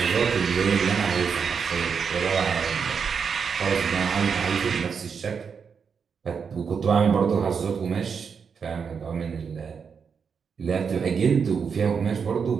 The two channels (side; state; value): left; quieter; 6.2 dB